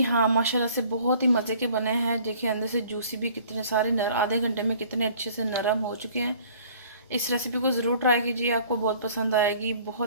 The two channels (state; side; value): inverted; both; correlation -0.53